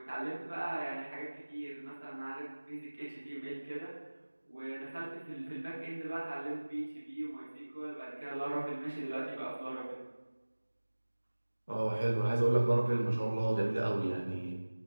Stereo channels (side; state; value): both; inverted; correlation -1.00